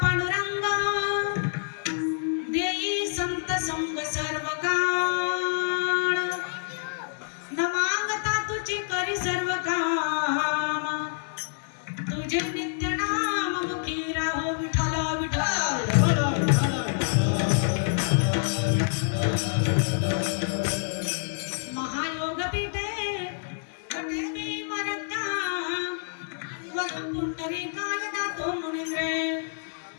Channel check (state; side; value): silent; right; 60 dB below the other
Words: पांडुरंग देई संत संग सर्व काळ न मागता तुझी करी सर्व काम तुझे नित्य नाम मुखी राहो विठ्ठल विठ्ठल महायोग पीठे कटे मी मरत्या वर पुंडरीकाय दातो मुनिंद्रे